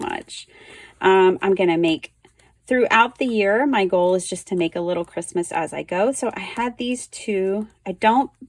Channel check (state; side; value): identical; both; correlation 1.00